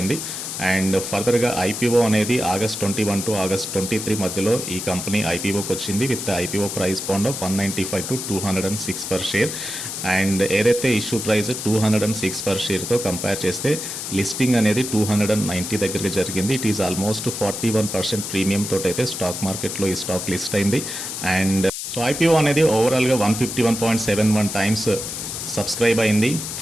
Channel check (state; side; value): noise; left; hiss, 6 dB below the sound